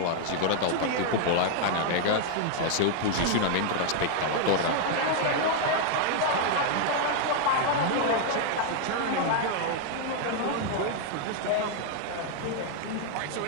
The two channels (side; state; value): both; different; correlation 0.00